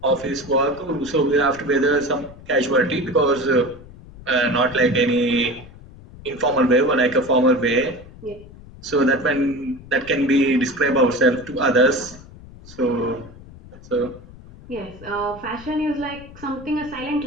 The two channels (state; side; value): noise; left; rumble, 19 dB below the sound